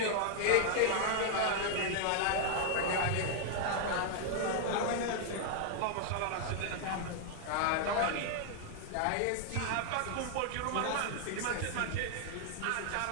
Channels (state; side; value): different; both; correlation 0.00